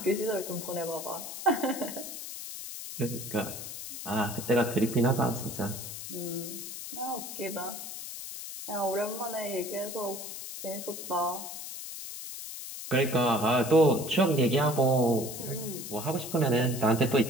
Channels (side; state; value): left; noise; hiss, 9 dB below the sound